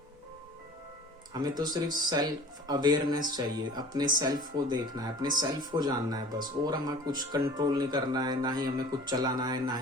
हमें तो सिर्फ सेल्फ अवेयरनेस चाहिए, अपने सेल्फ को देखना है, अपने सेल्फ को जानना है बस। और हमें कुछ कंट्रोल नहीं करना है, ना ही हमें कुछ चलाना है, ना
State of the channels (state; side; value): normal; both; correlation 0.44